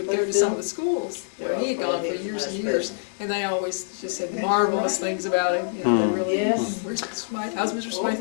go to some of the schools where he had gone for years and years, and they always just said marvelous things about him. They really, Yes. where's Smythe? How's Mr. Smythe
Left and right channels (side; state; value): right; silent; digital silence